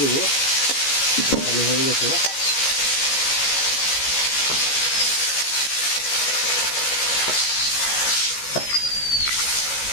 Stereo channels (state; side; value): late; right; 14 ms